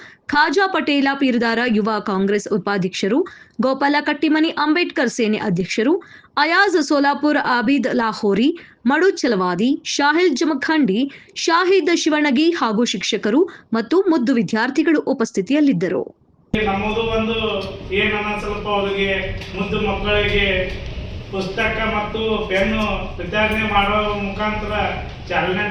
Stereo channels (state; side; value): identical; both; correlation 1.00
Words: ಖಾಜಾ ಪಟೇಲ ಪೀರದಾರ ಯುವ ಕಾಂಗ್ರೆಸ್ ಉಪಾಧ್ಯಕ್ಷರು, ಗೋಪಾಲ ಕಟ್ಟಿಮನಿ ಅಂಬೇಡ್ಕರ್ ಸೇನೆ ಅಧ್ಯಕ್ಷರು, ಅಯಾಜ್ ಸೋಲಾಪುರ್, ಆಬಿದ್ ಲಾಹೋರಿ, ಮಡು ಚಲವಾದಿ, ಶಾಹಿಲ್ ಜಮಖಂಡಿ, ಶಾಹಿದ್ ಶಿವಣಗಿ ಹಾಗೂ ಶಿಕ್ಷಕರು ಮತ್ತು ಮುದ್ದು ವಿದ್ಯಾರ್ಥಿಗಳು ಉಪಸ್ಥಿತಿಯಲ್ಲಿದ್ದರು. ನಮ್ಮದು ಒಂದು ಏನನ್ನ ಸ್ವಲ್ಪ ಅವರಿಗೆ ಮುದ್ದು ಮಕ್ಕಳಿಗೆ ಪುಸ್ತಕ ಮತ್ತು ಪೆನ್ನು ವಿತರಣೆ ಮಾಡೋ ಮುಖಾಂತರ ಚಾಲನೆ